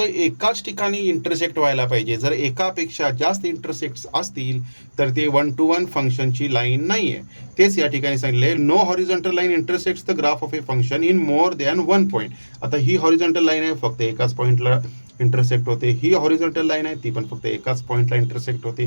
ठिकाणी इंटरसेक्ट व्हायला पाहिजे. जर एकापेक्षा जास्त इंटरसेक्ट्स असतील तर ते 1 to 1 फंक्शनची लाईन नाही आहे. तेच या ठिकाणी सांगितले, no horizontal line intersects the graph of a function in more than 1 point. आता ही हॉरिझॉन्टल लाईन आहे, फक्त एकाच पॉईंटला इंटरसेक्ट होते. ही हॉरिझॉन्टल लाईन आहे, ती पण फक्त एकाच पॉईंटला इंटरसेक्ट होते.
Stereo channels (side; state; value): both; inverted; correlation -1.00